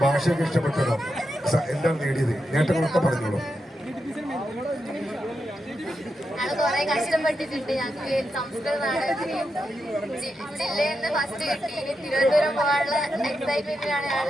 ഭാഷയൊക്കെ ഇഷ്ടപ്പെട്ടതോ എന്താണ് നേടിയത്, നേട്ടങ്ങളൊക്കെ പറഞ്ഞോളൂ. കുറെ കഷ്ടപ്പെട്ടിട്ടുണ്ട്. ഞങ്ങൾക്ക് സംസ്കൃത നാടകത്തിന് ജില്ലയിൽ നിന്ന് ഫസ്റ്റ് കിട്ടി. തിരുവനന്തപുരം പോകാനുള്ള എക്സൈറ്റ്മെന്റിലാണ്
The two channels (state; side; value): normal; both; correlation 0.86